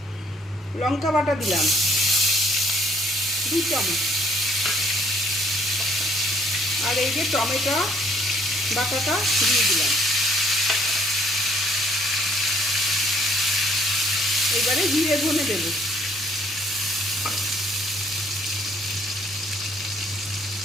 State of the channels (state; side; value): normal; both; correlation 0.62